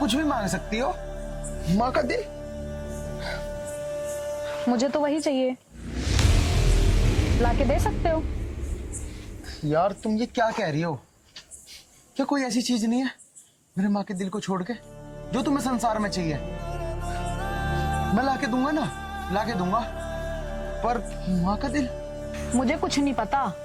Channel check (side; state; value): both; identical; correlation 1.00